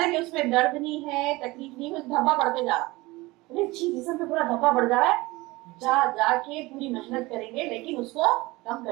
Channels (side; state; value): left; quieter; 21.4 dB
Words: उसमें दर्द नहीं है, तकलीफ नहीं है, धब्बा बढ़ते जा रहा, अरे अच्छी जिसम पे पूरा धब्बा बढ़ जा रहा है, जाके पूरी मेहनत करेंगे लेकिन उसको कम